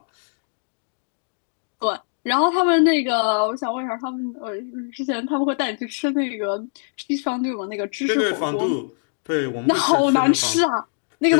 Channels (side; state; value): right; silent; digital silence